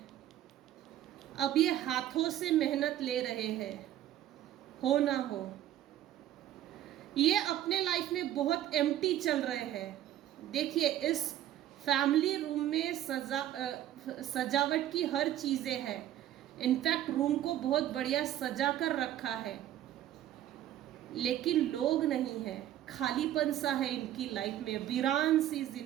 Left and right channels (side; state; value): left; quieter; 12.4 dB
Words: अब ये हाथों से मेहनत ले रहे हैं, हो ना हो। ये अपने लाइफ में बहुत एम्प्टी चल रहे हैं। देखिए, इस फैमिली रूम में सजावट की हर चीज़ें है। इनफैक्ट रूम को बहुत बढ़िया सजा कर रखा है, लेकिन लोग नहीं है, खालीपन सा है इनकी लाइफ में, वीरान सी